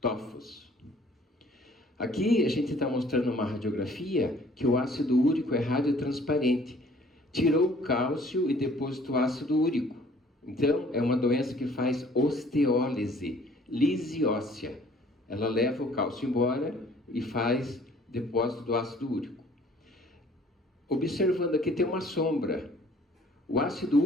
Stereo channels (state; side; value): normal; both; correlation 0.56